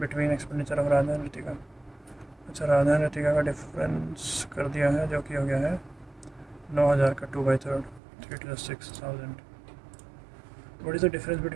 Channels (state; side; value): drops out; left; at 8.0 s